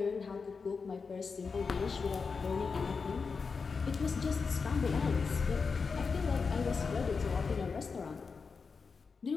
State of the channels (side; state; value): right; quieter; 5.0 dB